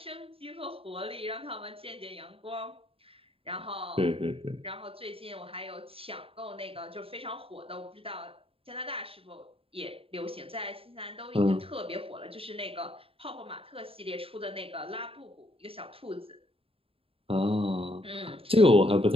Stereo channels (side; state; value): left; late; 0.27 ms